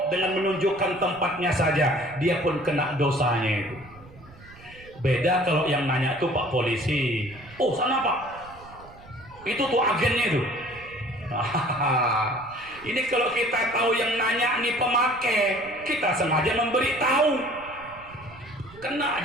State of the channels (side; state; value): right; noise; rumble, 22 dB below the sound